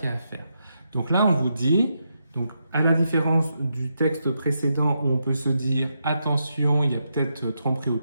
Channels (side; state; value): both; inverted; correlation -0.83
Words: y a à faire. Donc là, on vous dit, donc à la différence du texte précédent où on peut se dire attention, il y a peut-être tromperie